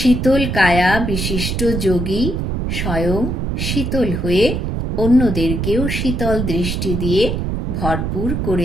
কায়া বিশিষ্ট যোগী স্বয়ং শীতল হয়ে অন্যদেরকেও শীতল দৃষ্টি দিয়ে ভরপুর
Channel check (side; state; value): right; noise; rumble, 2 dB below the sound